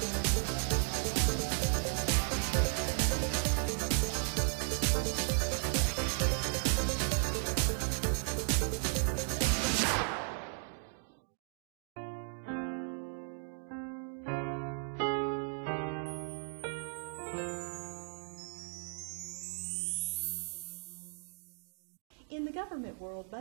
In the government world,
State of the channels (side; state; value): left; silent; 54 dB below the other